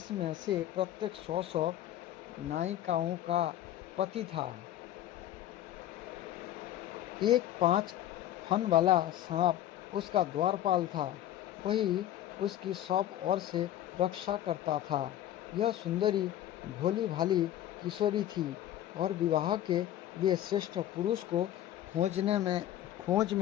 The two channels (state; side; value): quieter; right; 12.3 dB